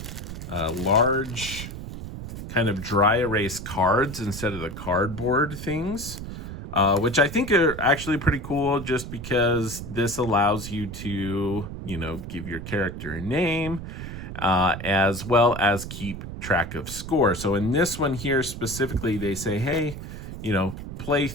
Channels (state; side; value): noise; right; rumble, 9 dB below the sound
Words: large kind of dry erase cards instead of the cardboard things, which I think are actually pretty cool, just because this allows you to, give your character a name, as well as keep track of score. So in this one here specifically, they say, hey, play